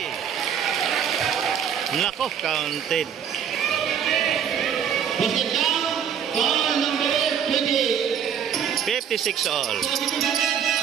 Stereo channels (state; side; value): quieter; left; 8.2 dB